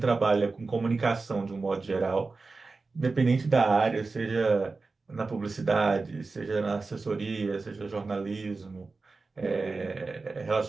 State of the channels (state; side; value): quieter; left; 3.9 dB